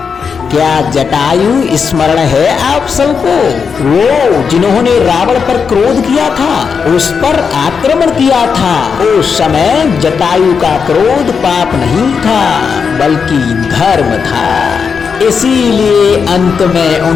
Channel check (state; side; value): quieter; right; 6.0 dB